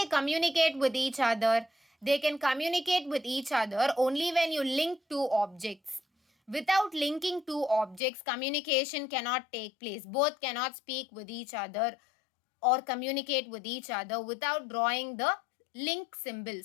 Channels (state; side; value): drops out; right; at 8.0 s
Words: communicate with each other? They can communicate with each other only when you link two objects. Without linking two objects, communication cannot take place. Both cannot speak with each other or communicate with each other without drawing the link symbol.